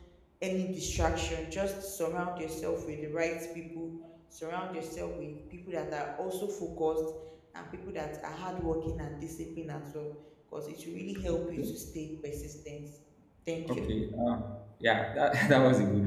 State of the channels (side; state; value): both; identical; correlation 1.00